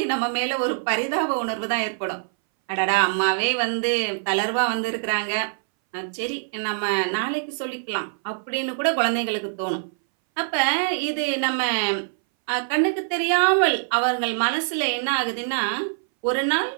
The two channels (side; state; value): left; silent; 61 dB below the other